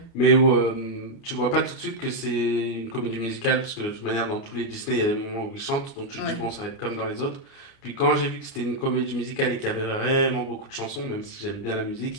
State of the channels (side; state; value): right; late; 29 ms